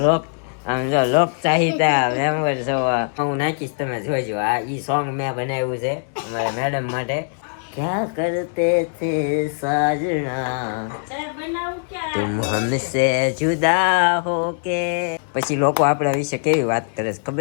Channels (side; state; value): right; silent; digital silence